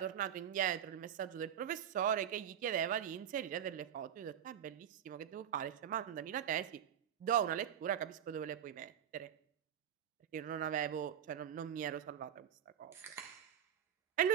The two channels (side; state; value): left; quieter; 9.5 dB